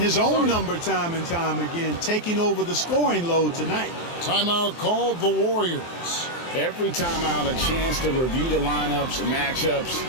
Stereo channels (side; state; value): right; late; 23 ms